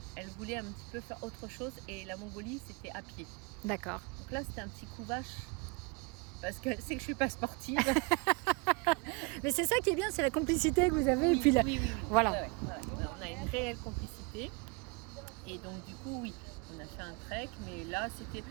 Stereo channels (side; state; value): left; quieter; 29.7 dB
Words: voulait un petit peu faire autre chose. Et la Mongolie, c'était à pied. D'accord. Donc là, c'était un petit coup vache. Parce qu'elle sait que je ne suis pas sportive. Mais c'est ça qui est bien, c'est la complicité que vous avez. Oui, et puis oui. Voilà. Ouais. On a une réelle complicité. Et donc, du coup, oui, on a fait un trek. Mais là,